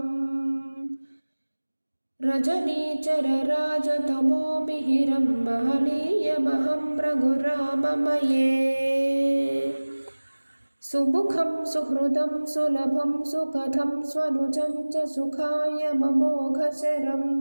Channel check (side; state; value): both; inverted; correlation -1.00